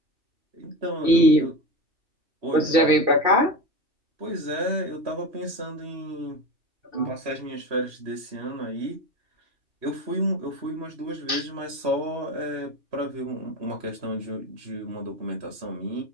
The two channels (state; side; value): late; left; 2.7 ms